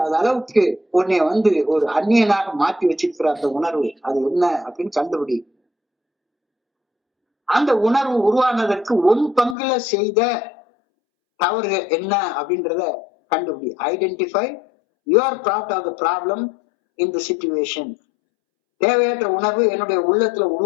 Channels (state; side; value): drops out; right; at 9.6 s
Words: அளவுக்கு உன்னை ஒரு அந்நியனாக மாற்றி வச்சிருக்கிற அந்த உணர்வு அது என்ன அப்படின்னு கண்டுபிடி. அந்த உணர்வு உருவானதற்கு உன் பங்குல செய்த தவறு என்ன அப்படின்றத கண்டுபிடி. Identify your part of the problem in the situation. தேவையற்ற உணர்வு என்னுடைய உள்ளத்துல